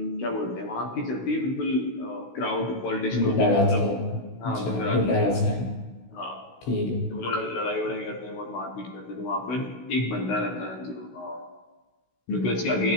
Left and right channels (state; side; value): late; right; 16 ms